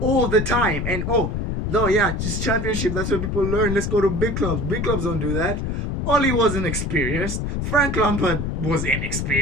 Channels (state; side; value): noise; left; rumble, 2 dB below the sound